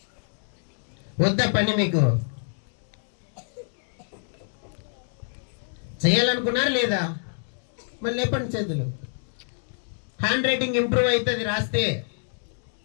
వద్దా పని మీకు? చేయాలనుకున్నారు లేదా? మరి లేపండి చేతులు. హ్యాండ్ రైటింగ్ ఇంప్రూవ్ అవుతుంది రాస్తే,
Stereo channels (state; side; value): silent; right; digital silence